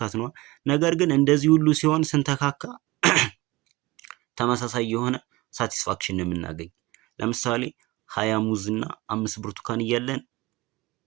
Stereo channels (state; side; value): quieter; left; 21.3 dB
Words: ነው። ነገር ግን እንደዚህ ሁሉ ሲሆን ስንተካካ ተመሳሳይ የሆነ ሳቲስፋክሽን ነው የምናገኝ። ለምሳሌ 20 ሙዝ እና 5 ብርቱካን እያለን